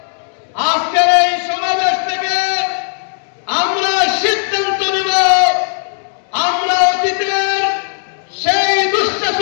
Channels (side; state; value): right; silent; digital silence